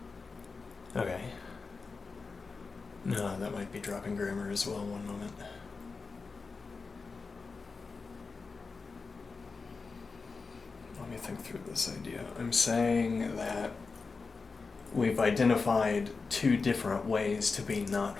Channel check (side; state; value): right; quieter; 4.4 dB